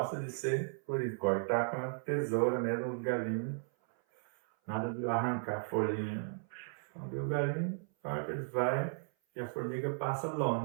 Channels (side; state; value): left; silent; 54 dB below the other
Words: de ser por isso, cortar com a tesoura mesmo, os galinhos. Nada de arrancar a folhinha. Quando o galinho, claro que ele vai e a formiga passa